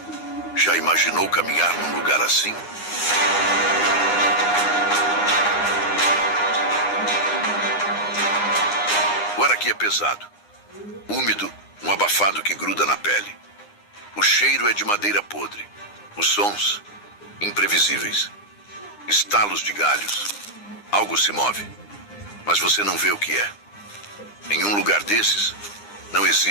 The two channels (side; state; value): right; late; 9.8 ms